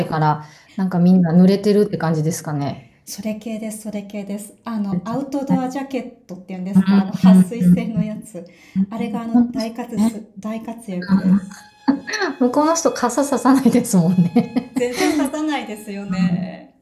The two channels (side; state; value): both; identical; correlation 1.00